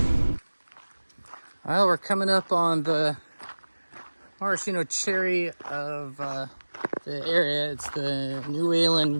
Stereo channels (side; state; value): both; inverted; correlation -1.00